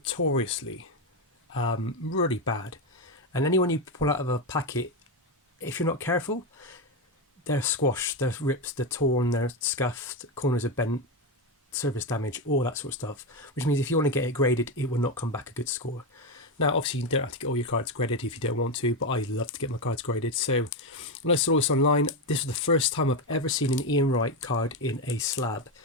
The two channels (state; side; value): normal; both; correlation 0.11